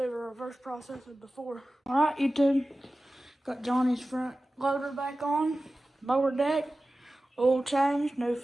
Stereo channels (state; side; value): normal; both; correlation 0.95